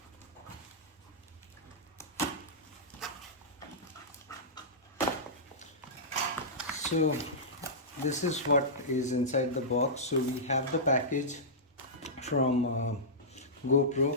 So this is what is inside the box. So we have the package from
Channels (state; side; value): normal; both; correlation -0.15